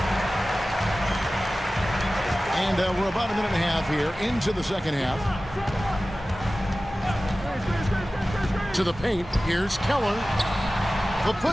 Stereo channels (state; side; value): normal; both; correlation 0.96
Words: And we're about a minute and a half here into the second half. To the paint, here's Keller. The